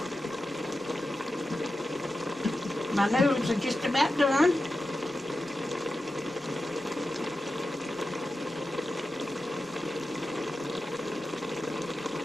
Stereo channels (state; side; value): normal; both; correlation 0.92